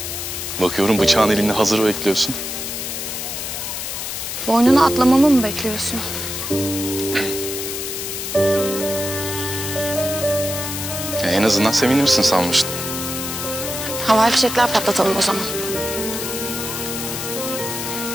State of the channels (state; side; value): noise; left; hiss, 5 dB below the sound